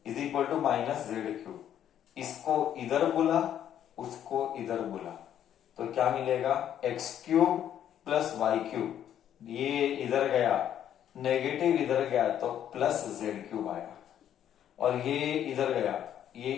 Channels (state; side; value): quieter; right; 10.3 dB